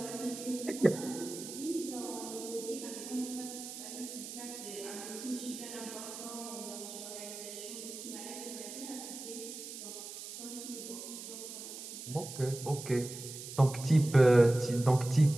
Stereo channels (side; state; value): right; noise; hiss, 10 dB below the sound